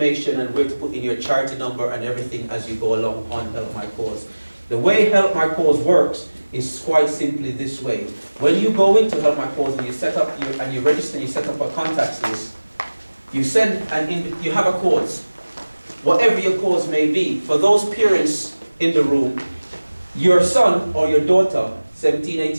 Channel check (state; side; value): inverted; both; correlation -1.00